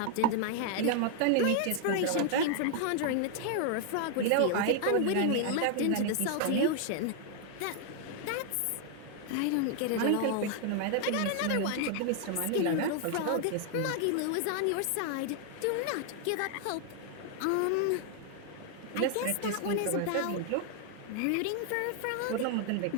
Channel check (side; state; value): both; different; correlation 0.00